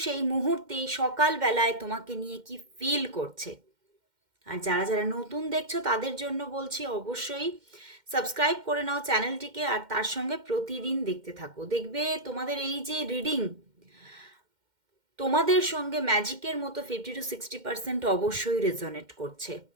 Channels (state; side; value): late; left; 2.1 ms